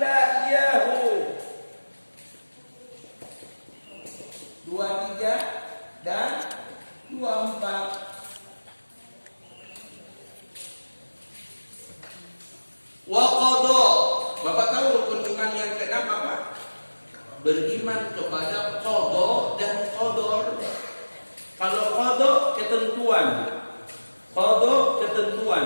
iyyahu. 23 dan 24. Wa qada. Bapak tahu rukun iman yang keenam apa? Beriman kepada qada dan qadar. Kalau qada ketentuan,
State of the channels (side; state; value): both; inverted; correlation -1.00